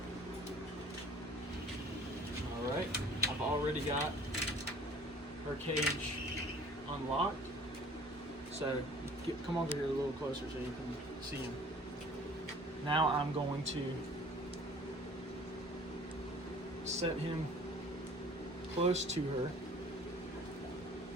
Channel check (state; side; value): normal; both; correlation 0.50